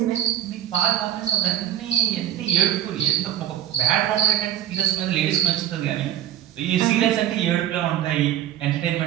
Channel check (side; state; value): left; quieter; 11.7 dB